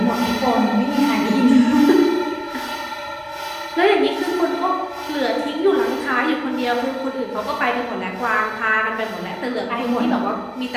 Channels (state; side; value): identical; both; correlation 1.00